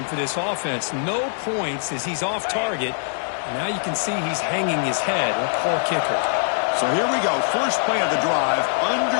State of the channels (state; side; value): silent; right; digital silence